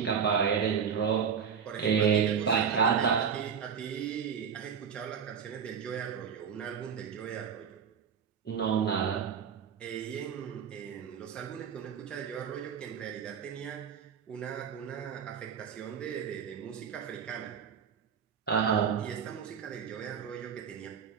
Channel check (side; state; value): left; quieter; 7.2 dB